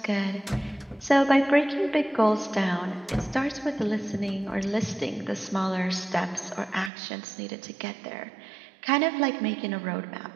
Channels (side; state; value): left; drops out; at 6.9 s